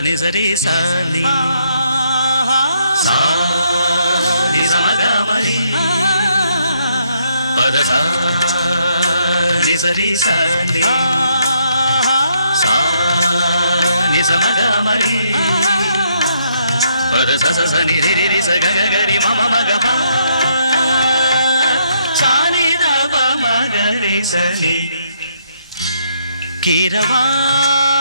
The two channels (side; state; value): both; inverted; correlation -0.74